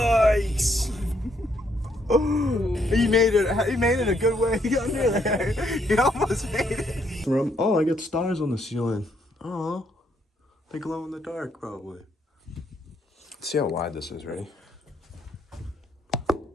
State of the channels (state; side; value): normal; both; correlation 0.72